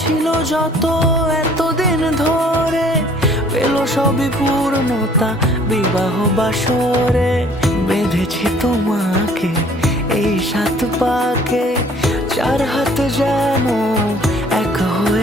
ছিল যত এতদিন ধরে, পেল সবই পূর্ণতা বিবাহ বাসরে। বেঁধেছি তোমাকে এই 7 পাকে, 4 হাত যেন এক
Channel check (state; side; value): normal; both; correlation 0.56